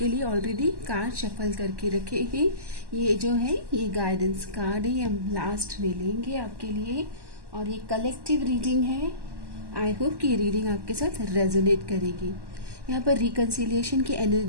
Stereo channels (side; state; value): left; late; 1.1 ms